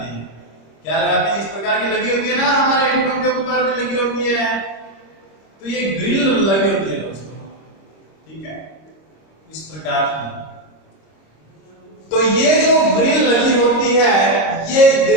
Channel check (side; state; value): right; late; 26 ms